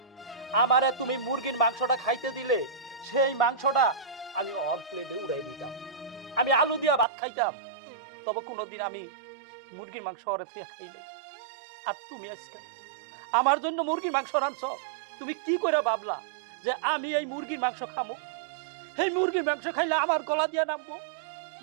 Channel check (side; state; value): left; drops out; at 7.1 s